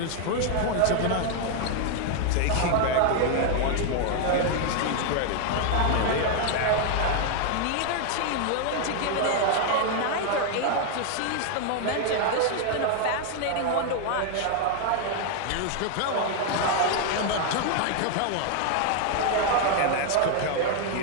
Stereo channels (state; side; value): different; both; correlation 0.00